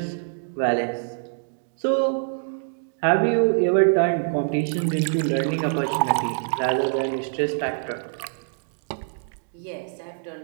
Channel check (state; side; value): silent; left; digital silence